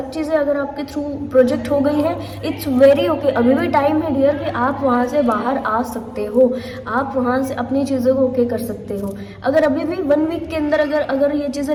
चीज़ें अगर आपके थ्रू प्रोजेक्ट हो गई हैं, इट्स वेरी ओके, अभी भी टाइम है डियर कि आप वहाँ से बाहर आ सकते हो, आप वहाँ से अपनी चीज़ों को ओके कर सकते हो। अगर अभी भी 1 वीक के अंदर अगर ये चीज़ें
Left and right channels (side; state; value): both; identical; correlation 1.00